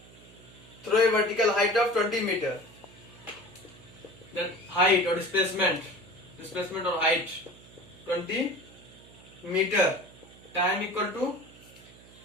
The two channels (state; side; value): noise; right; hum, 22 dB below the sound